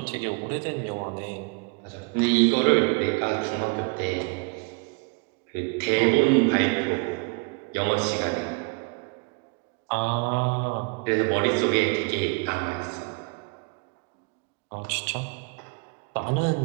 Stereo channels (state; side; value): quieter; left; 31.4 dB